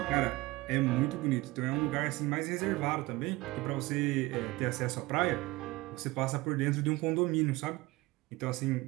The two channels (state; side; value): quieter; left; 20.8 dB